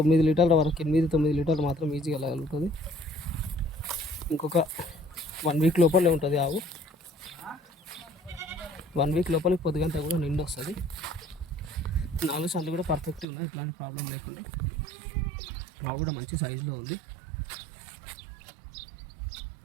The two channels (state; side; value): drops out; left; at 13.2 s